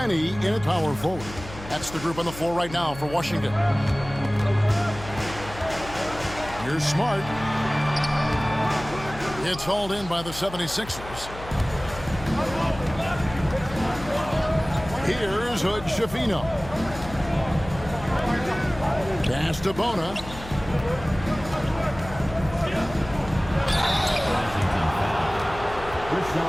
in at power forward. That's the group on the floor right now for Washington. Here's Smart. It's hauled in by the 76ers. Here's Hood Schifino. Pass to Bona.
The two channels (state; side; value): noise; left; hum, 14 dB below the sound